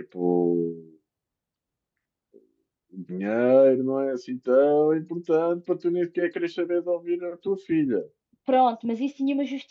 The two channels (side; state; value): both; identical; correlation 1.00